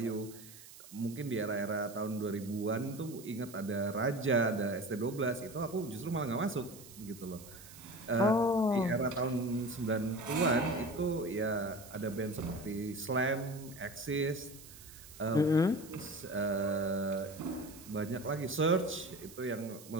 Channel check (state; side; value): noise; right; hiss, 18 dB below the sound